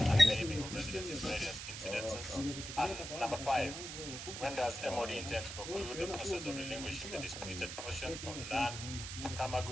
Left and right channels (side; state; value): right; noise; hiss, 7 dB below the sound